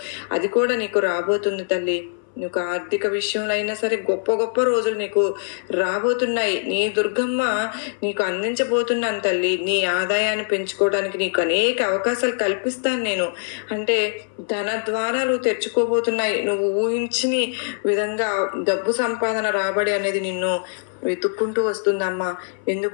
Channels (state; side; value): silent; right; 61 dB below the other